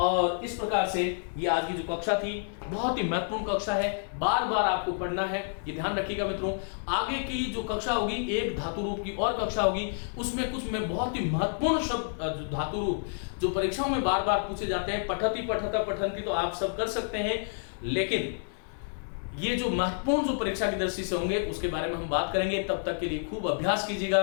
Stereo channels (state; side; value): silent; right; 58 dB below the other